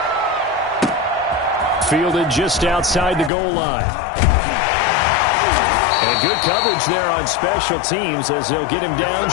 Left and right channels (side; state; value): right; drops out; at 3.3 s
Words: Fielded just outside the goal line. And good coverage there on special teams as they'll get him down